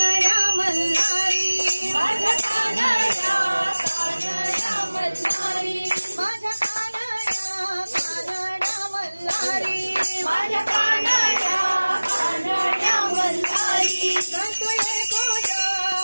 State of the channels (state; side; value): inverted; both; correlation -1.00